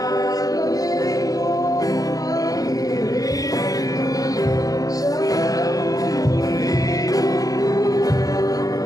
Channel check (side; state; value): right; late; 0.17 ms